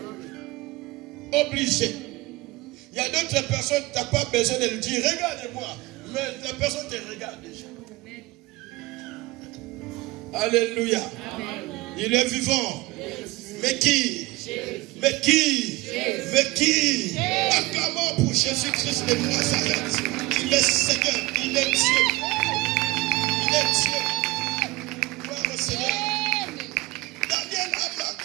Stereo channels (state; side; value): quieter; left; 21.2 dB